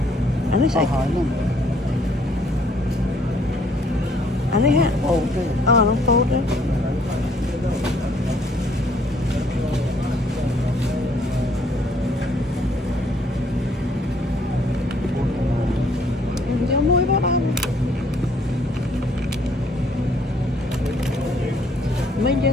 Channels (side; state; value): both; normal; correlation 0.64